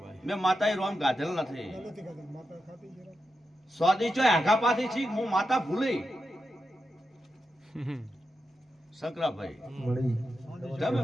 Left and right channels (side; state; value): both; normal; correlation 0.88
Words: મેં માતાએ રોમ ગાધેલ નથી. સ્વાદી ચોય આઘા પાછી છી હું માતા ભૂલી શંકરાભાઈ મળી તમે